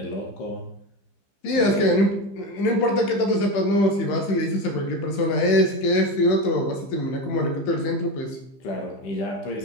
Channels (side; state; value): right; late; 15 ms